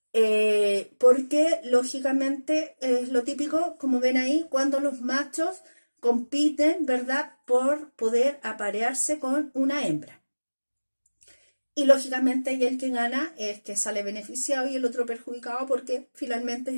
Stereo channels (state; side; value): inverted; both; correlation -1.00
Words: Porque lógicamente es lo típico, como ven ahí, cuando los machos compiten, ¿verdad? Por poder aparearse con una hembra. Y lógicamente y el que gana es el que sale beneficiado y el otro perjudicado porque finalmente